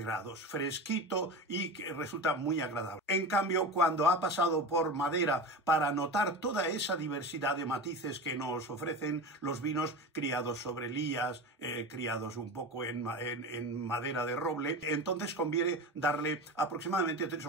grados, fresquito y resulta muy agradable. En cambio, cuando ha pasado por madera, para notar toda esa diversidad de matices que nos ofrecen los vinos criados sobre lías, criados un poco en madera de roble, entonces conviene darle aproximadamente 3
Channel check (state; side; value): normal; both; correlation 0.27